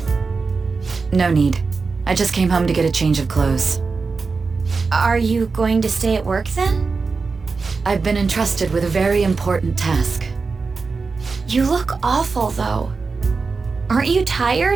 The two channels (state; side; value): quieter; left; 4.5 dB